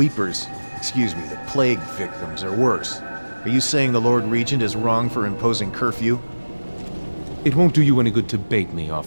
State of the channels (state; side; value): inverted; both; correlation -1.00